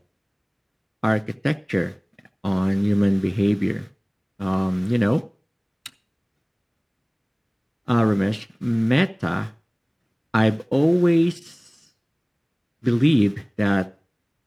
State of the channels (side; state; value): both; identical; correlation 1.00